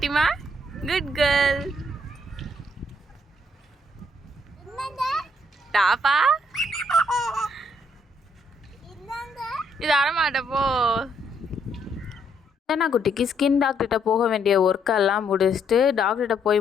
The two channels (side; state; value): both; normal; correlation 0.71